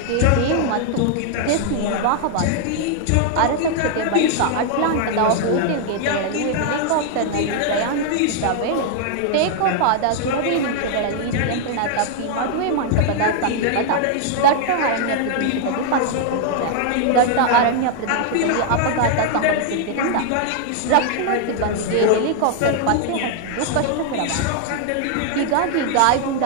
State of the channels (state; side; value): different; both; correlation 0.00